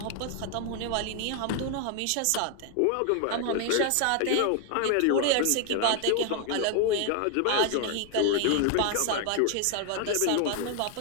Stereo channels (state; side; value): different; both; correlation 0.00